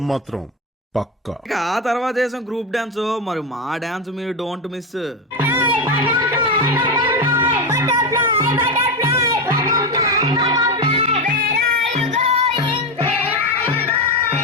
మాత్రం పక్కా. ఇక ఆ తర్వాత వేసాం గ్రూప్ డాన్స్. మరి మా డాన్స్ మీరు don't miss.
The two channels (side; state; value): both; normal; correlation 0.13